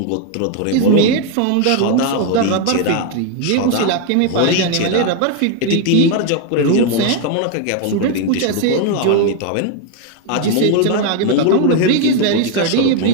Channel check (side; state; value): both; different; correlation 0.01